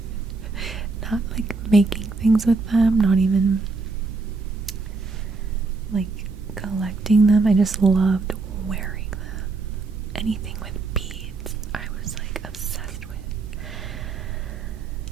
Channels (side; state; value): left; quieter; 3.9 dB